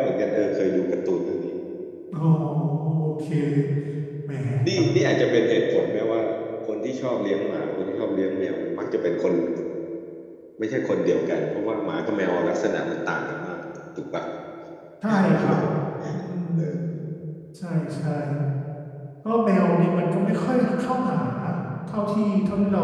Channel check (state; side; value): identical; both; correlation 1.00